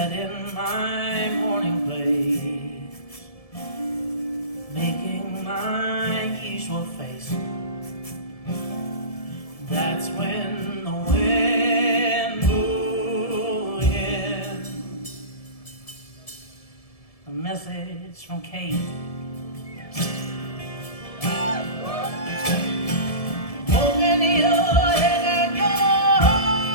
in my morning place, making my usual face. That's when the wind blew in. A message from Kate. Open your head and your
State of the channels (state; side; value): late; right; 1.7 ms